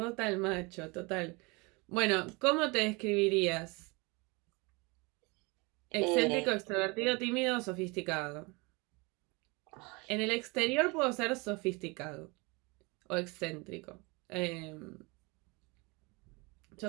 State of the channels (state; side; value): quieter; left; 27.4 dB